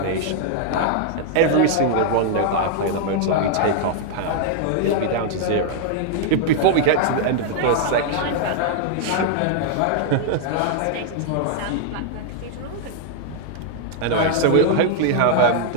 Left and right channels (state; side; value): different; both; correlation 0.00